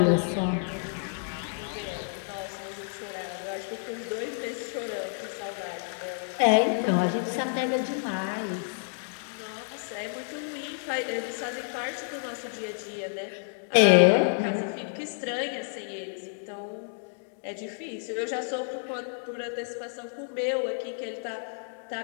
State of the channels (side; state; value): right; silent; digital silence